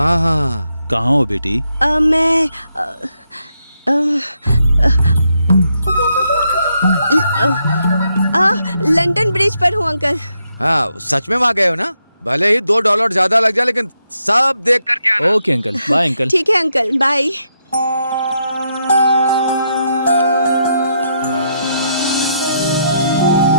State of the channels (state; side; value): inverted; both; correlation -0.79